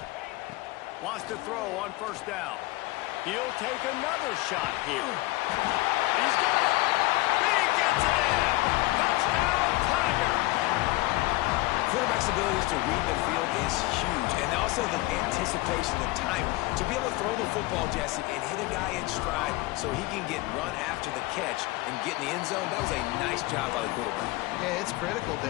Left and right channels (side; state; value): right; quieter; 20.3 dB